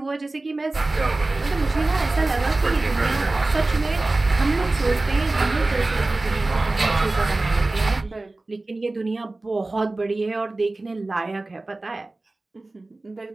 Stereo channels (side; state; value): left; quieter; 3.0 dB